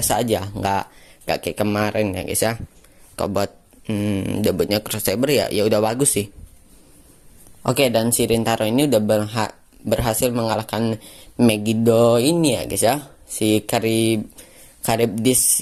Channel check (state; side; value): identical; both; correlation 1.00